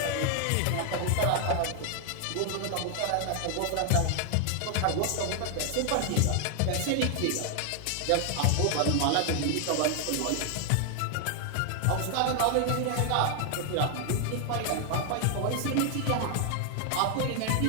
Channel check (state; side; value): different; both; correlation 0.00